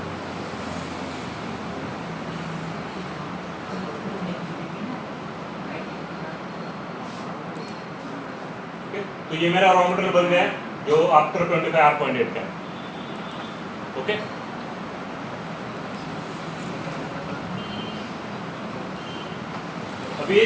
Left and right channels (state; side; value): identical; both; correlation 1.00